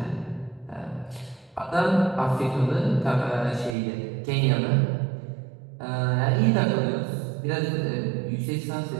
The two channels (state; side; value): drops out; left; at 3.8 s